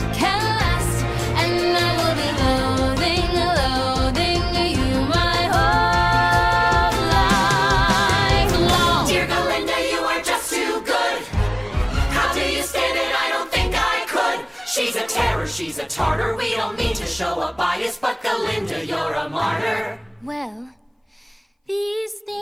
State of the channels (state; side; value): identical; both; correlation 1.00